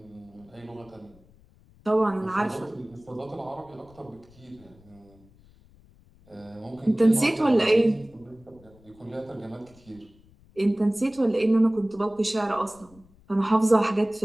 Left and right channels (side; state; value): left; noise; rumble, 27 dB below the sound